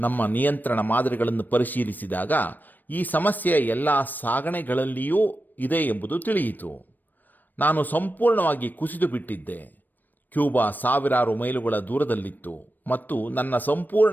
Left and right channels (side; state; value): right; late; 0.089 ms